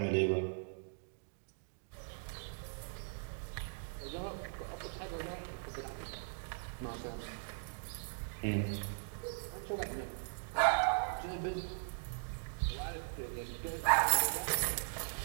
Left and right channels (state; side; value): silent; left; digital silence